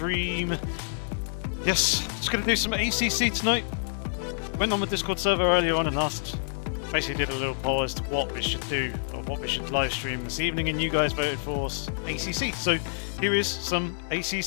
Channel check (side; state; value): right; silent; digital silence